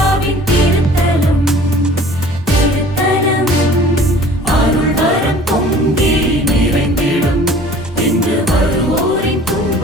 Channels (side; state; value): both; normal; correlation 0.48